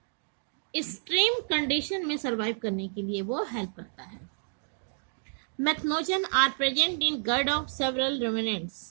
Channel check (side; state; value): left; silent; digital silence